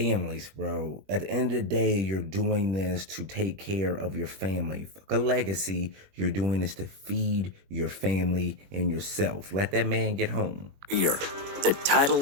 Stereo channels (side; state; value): left; late; 21 ms